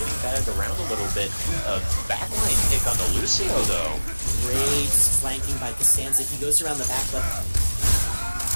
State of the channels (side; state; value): both; inverted; correlation -1.00